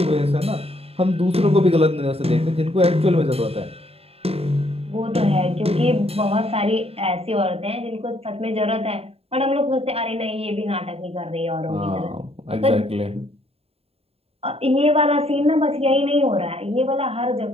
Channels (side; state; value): left; late; 0.29 ms